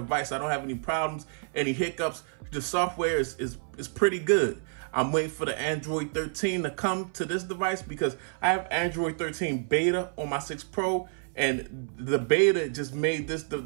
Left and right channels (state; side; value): silent; left; 58 dB below the other